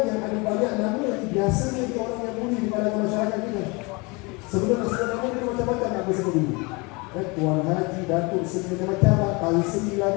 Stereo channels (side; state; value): right; quieter; 27.7 dB